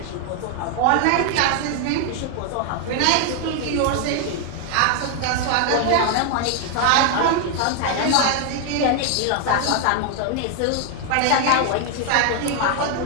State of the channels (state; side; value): different; both; correlation 0.00